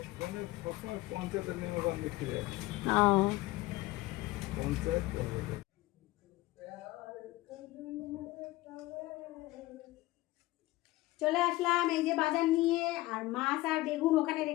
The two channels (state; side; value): quieter; right; 18.9 dB